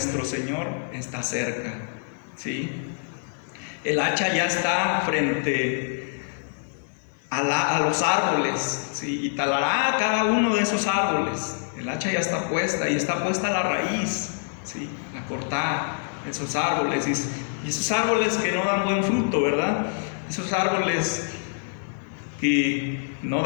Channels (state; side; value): silent; right; 61 dB below the other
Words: Señor está cerca, ¿sí? El hacha ya está frente a los árboles, ¿sí? Y talará cada uno de esos árboles. El hacha ya está puesta, y está puesta la raíz, ¿sí?, a cortar esos árboles. Y esos árboles que no dan buen fruto, ¿verdad? Esos árboles que no